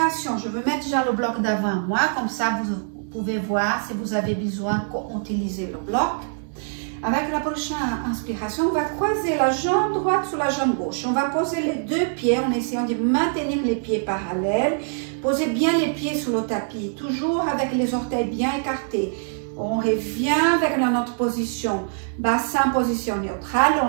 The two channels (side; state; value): left; silent; 63 dB below the other